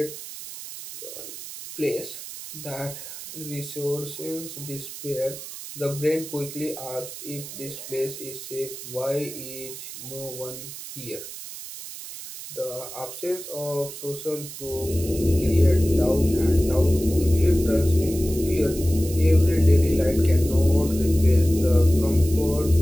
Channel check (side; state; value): right; noise; hiss, 12 dB below the sound